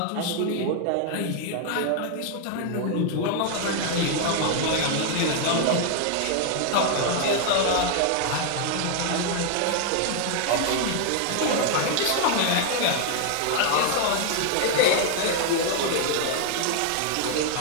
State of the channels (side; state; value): both; different; correlation 0.00